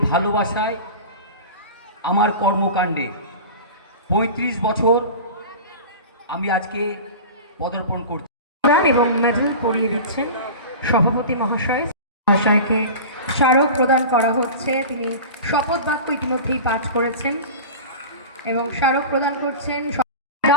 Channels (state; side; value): inverted; both; correlation -0.32